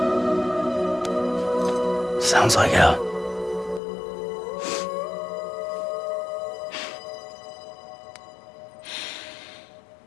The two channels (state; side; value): drops out; right; at 3.8 s